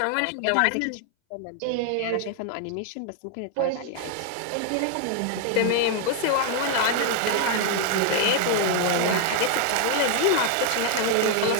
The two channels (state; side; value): different; both; correlation 0.00